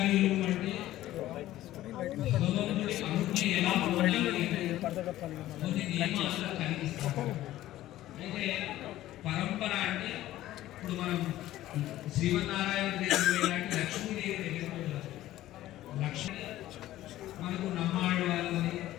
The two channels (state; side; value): quieter; right; 14.7 dB